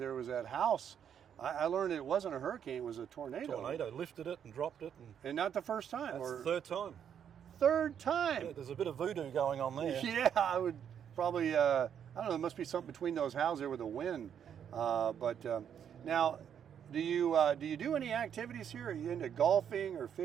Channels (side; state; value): left; quieter; 8.6 dB